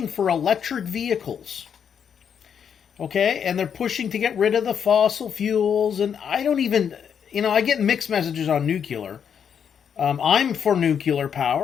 for electric vehicles. Okay, and they're pushing to get rid of the fossil fuels, and I don't even, I get mixed messages on nuclear. I'm for nuclear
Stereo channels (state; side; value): quieter; right; 7.8 dB